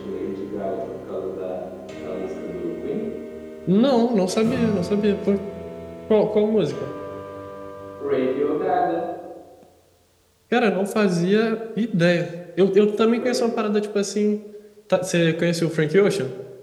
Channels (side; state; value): both; identical; correlation 1.00